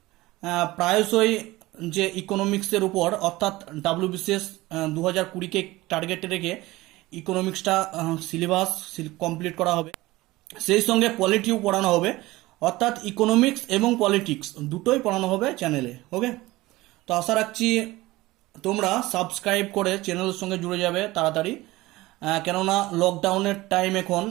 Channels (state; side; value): quieter; left; 19.1 dB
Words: প্রায়শই যে ইকোনমিক্সের উপর, অর্থাৎ WBCS 2020কে টার্গেটে রেখে ইকোনমিক্সটা সিলেবাস কমপ্লিট করা হবে, সেই সঙ্গে পলিটিও পড়ানো হবে, অর্থাৎ ইকোনমিক্স এবং পলিটিক্স দুটোই পড়ানো হবে চ্যানেলে। ওকে, তো আশা রাখছি তোমরা সাবস্ক্রাইব করে চ্যানেলের সঙ্গে জুড়ে যাবে তাড়াতাড়ি, কেননা লকডাউনের টাইম, এখন